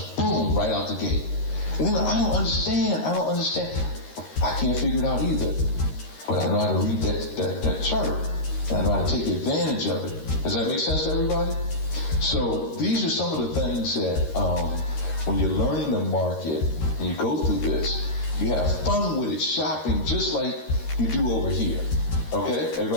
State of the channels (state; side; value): late; right; 13 ms